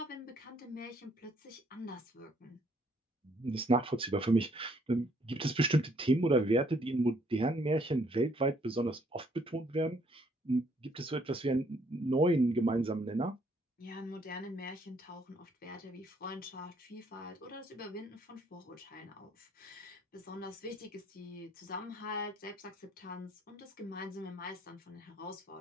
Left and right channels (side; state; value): both; normal; correlation 0.66